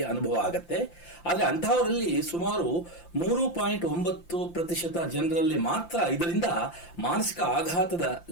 ಅನುಭವ ಆಗತ್ತೆ. ಆದರೆ ಅಂತಹವರಲ್ಲಿ ಸುಮಾರು 3.9% ಜನರಲ್ಲಿ ಮಾತ್ರ ಇದರಿಂದ ಮಾನಸಿಕ ಆಘಾತದ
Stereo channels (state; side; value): late; right; 5.8 ms